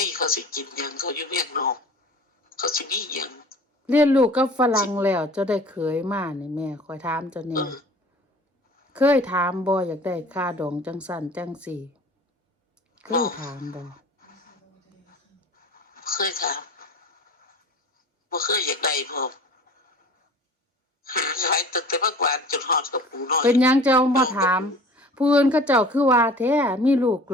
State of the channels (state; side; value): normal; both; correlation 0.44